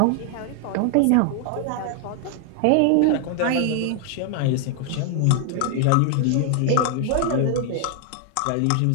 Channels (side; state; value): both; different; correlation 0.00